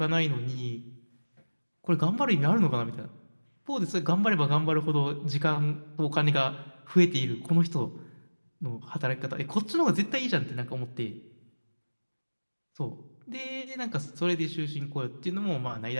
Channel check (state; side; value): inverted; both; correlation -1.00